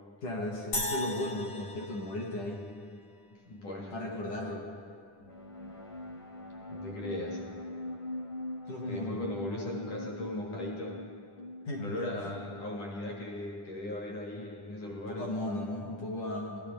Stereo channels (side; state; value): right; late; 10 ms